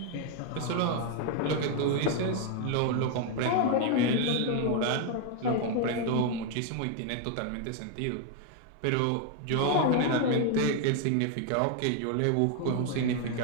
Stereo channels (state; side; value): different; both; correlation 0.00